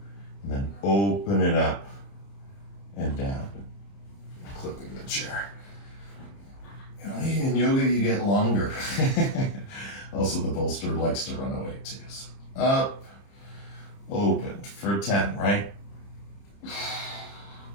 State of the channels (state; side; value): late; right; 30 ms